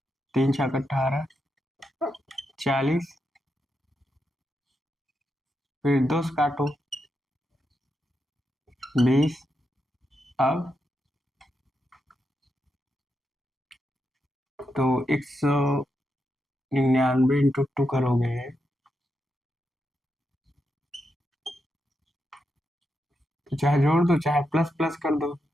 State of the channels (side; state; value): both; normal; correlation 0.85